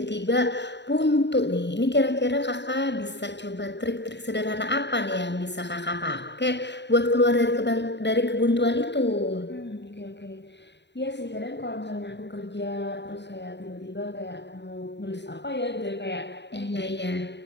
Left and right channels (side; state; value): right; late; 0.51 ms